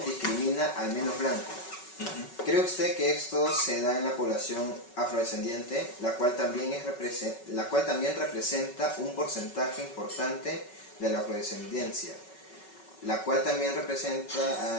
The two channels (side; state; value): right; late; 5.3 ms